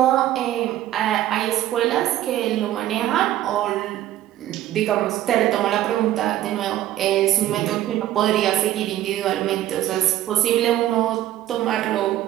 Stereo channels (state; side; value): quieter; left; 13.3 dB